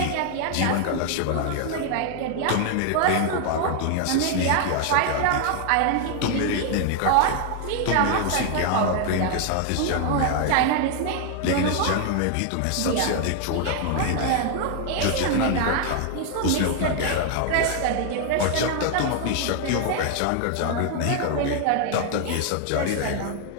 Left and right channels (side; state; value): both; different; correlation 0.00